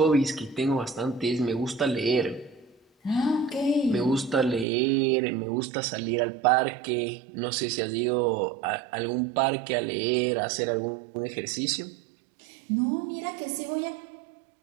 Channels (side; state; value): left; drops out; at 4.7 s